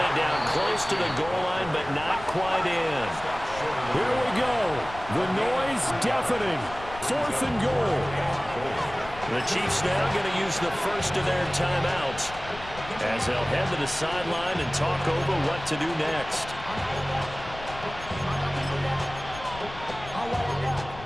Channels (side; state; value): left; noise; rumble, 14 dB below the sound